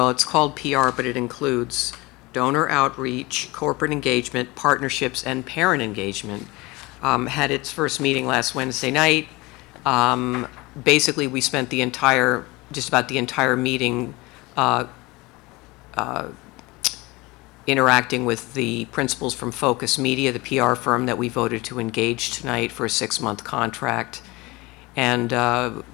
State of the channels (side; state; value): right; quieter; 22.9 dB